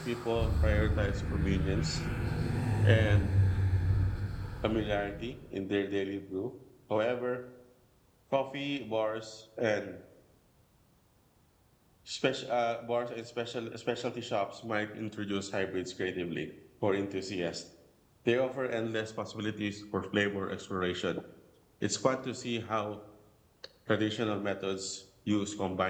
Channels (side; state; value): both; identical; correlation 1.00